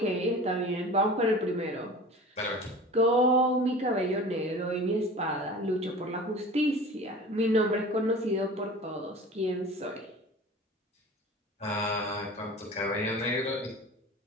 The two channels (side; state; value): both; normal; correlation 0.38